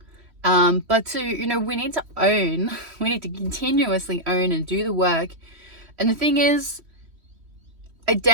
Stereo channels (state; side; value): late; left; 3.1 ms